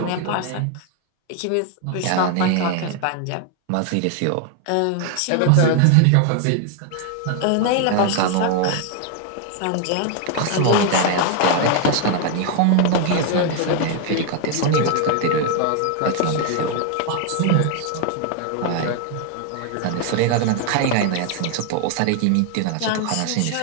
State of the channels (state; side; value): different; both; correlation 0.00